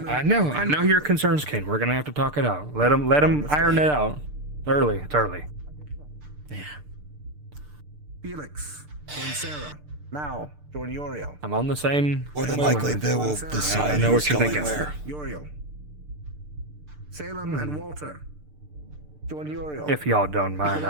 I know your concerns, Ken. We're gonna have to talk it out. Let them iron it out. Early. It's early. Yeah. Felix and Sarah. Now, join Uriel. I'm on the same. More than same likely, wavelength. they will I decide know who's what you're going thinking. where. Uriel. Salem and Walter. Join Uriel. If y'all don't mind,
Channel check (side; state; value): left; late; 6.7 ms